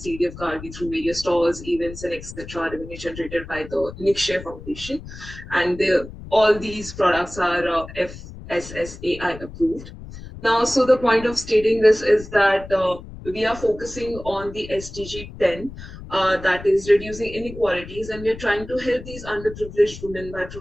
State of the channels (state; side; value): noise; left; rumble, 14 dB below the sound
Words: Gargi through various stores, events, and etc. revenue generated by the Nikshay Foundation. And all these products are FSSAI approved. Now, so the point of stating this is that we are focusing on the SDG 10, that is reducing inequalities, and we're trying to help these underprivileged women by